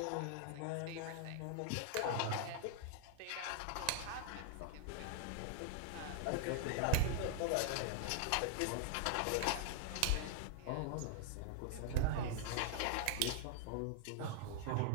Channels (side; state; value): both; different; correlation 0.00